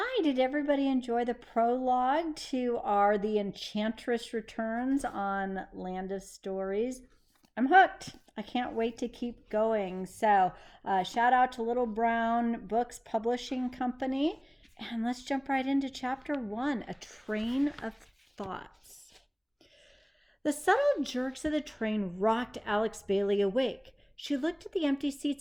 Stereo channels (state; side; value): identical; both; correlation 1.00